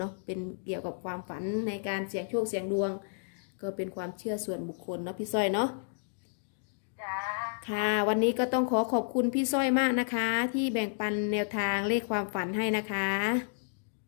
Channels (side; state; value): right; silent; digital silence